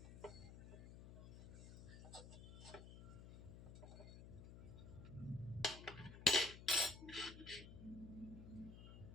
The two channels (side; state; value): left; noise; hum, 13 dB below the sound